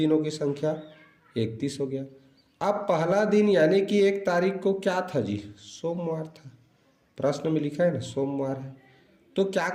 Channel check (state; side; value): identical; both; correlation 1.00